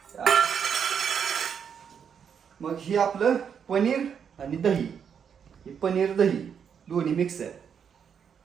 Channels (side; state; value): left; quieter; 7.4 dB